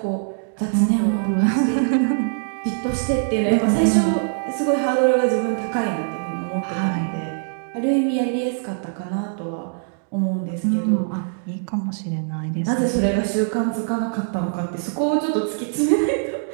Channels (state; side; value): silent; left; digital silence